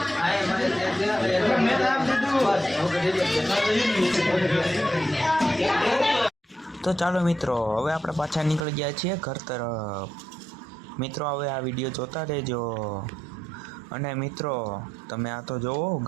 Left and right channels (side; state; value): left; drops out; at 8.7 s